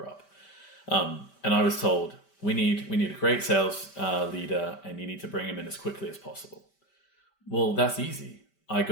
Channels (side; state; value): right; late; 5.1 ms